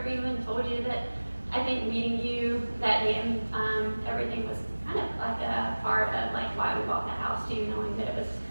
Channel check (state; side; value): inverted; both; correlation -1.00